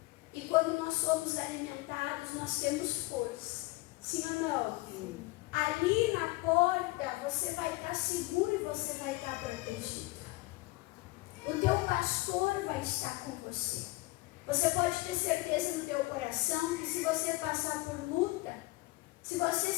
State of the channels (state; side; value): quieter; right; 21.5 dB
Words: E quando nós somos alimentados, nós temos força. Sim ou não? Sim. Ali na porta, você vai estar seguro e você vai estar protegido. O teu pastor vai estar com você. Você pode ter certeza no teu coração que se você passar por luta, se você